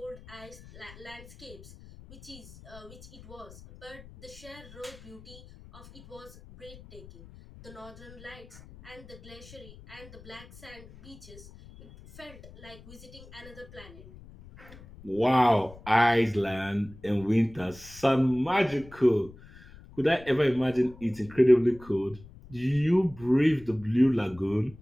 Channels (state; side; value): noise; left; rumble, 19 dB below the sound